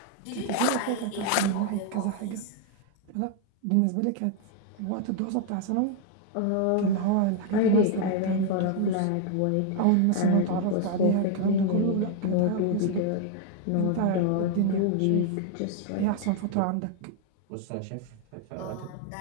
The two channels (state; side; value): different; both; correlation 0.00